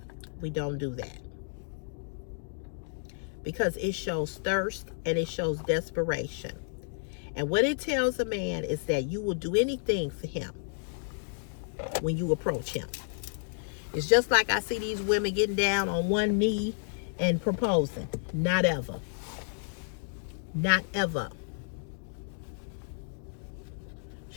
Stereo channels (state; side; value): silent; right; digital silence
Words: We don't do that. Because it shows thirst and it shows desperation. And what it tells a man is that you will do anything for him when you approach him. It's just like I see these women getting down on one knee and proposing. Not ever. Not ever.